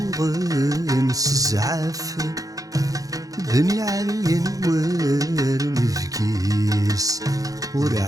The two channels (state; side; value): late; left; 0.17 ms